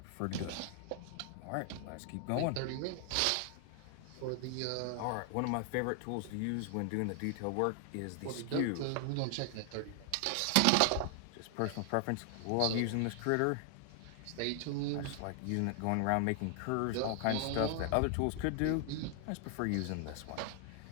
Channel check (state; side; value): different; both; correlation 0.00